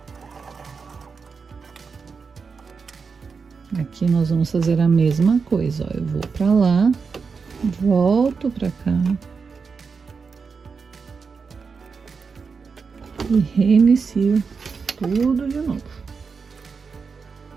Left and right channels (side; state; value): left; quieter; 5.2 dB